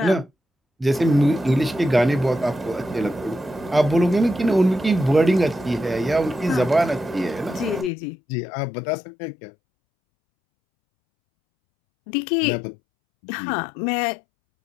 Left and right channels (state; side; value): drops out; right; at 7.9 s